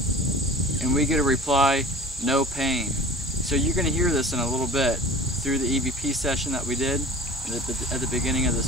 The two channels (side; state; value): both; normal; correlation 0.41